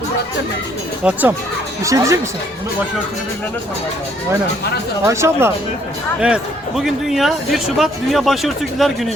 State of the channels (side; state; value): both; normal; correlation 0.65